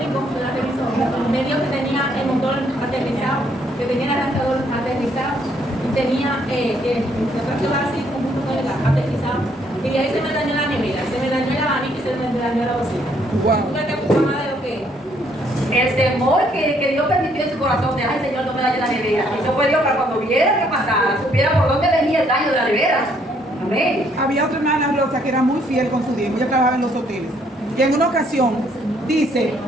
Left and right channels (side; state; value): both; normal; correlation 0.68